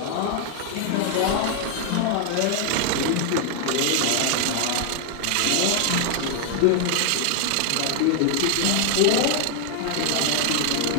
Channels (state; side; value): different; both; correlation 0.00